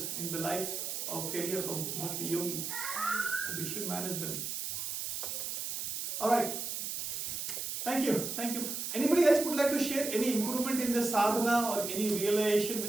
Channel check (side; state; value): right; noise; hiss, 4 dB below the sound